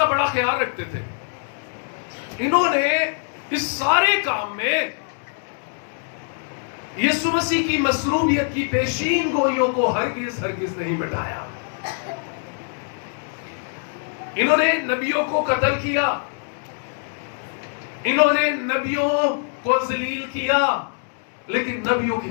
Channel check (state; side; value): silent; right; 63 dB below the other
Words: بڑا خیال رکھتے تھے. انہوں نے اس سارے کام میں یسوع مسیح کی مصلوبیت کی پیشین گوئیوں کو ہرگز نہیں مٹایا. انہوں نے نبیوں کو قتل کیا، انہوں نے نبیوں کو ذلیل کیا، لیکن نبیوں کی